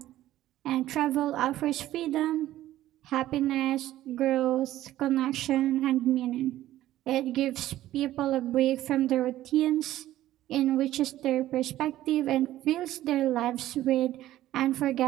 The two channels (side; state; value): left; quieter; 14.2 dB